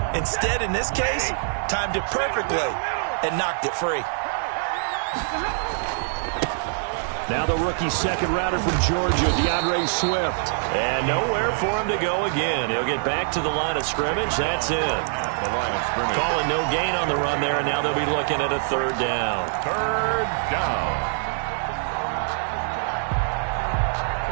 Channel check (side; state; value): left; silent; digital silence